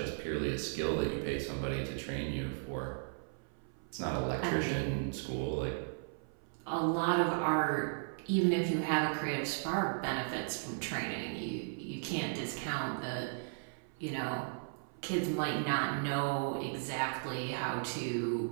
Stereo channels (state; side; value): silent; left; 54 dB below the other